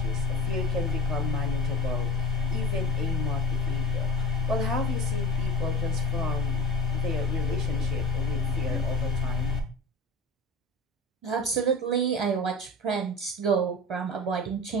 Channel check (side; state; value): both; normal; correlation 0.35